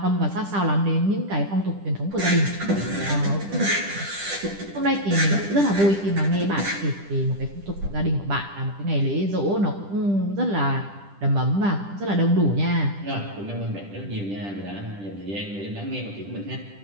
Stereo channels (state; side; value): late; left; 10 ms